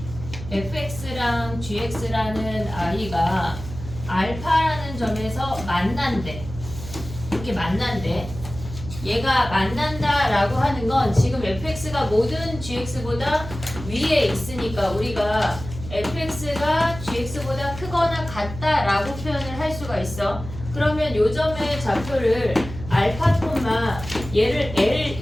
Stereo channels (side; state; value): right; noise; hum, 11 dB below the sound